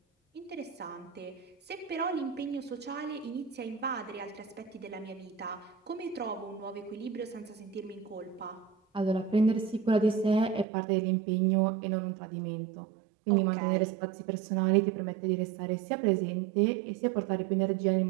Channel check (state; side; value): drops out; left; at 10.7 s